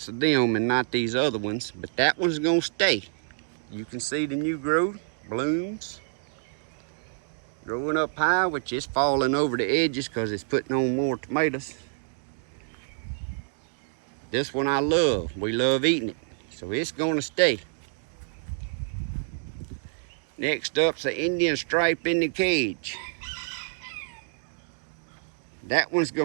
of them and not these other ones, but that one's gonna stay. You can see the new growth, blooms, growing up high, which is falling over the edges because it's putting on more tomatoes. This one I love. We love eating it, so it's gonna stay. Next up's the Indian stripe in the cage. That one's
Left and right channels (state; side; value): silent; left; digital silence